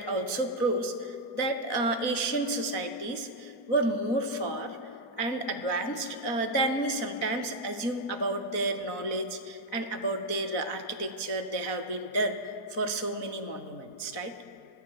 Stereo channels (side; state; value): right; late; 4.1 ms